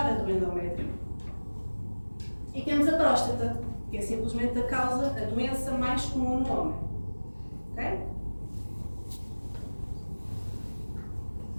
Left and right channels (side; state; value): both; inverted; correlation -1.00